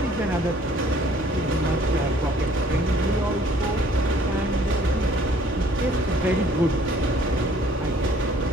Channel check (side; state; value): both; normal; correlation 0.58